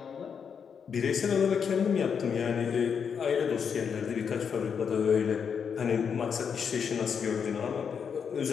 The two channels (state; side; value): quieter; right; 6.8 dB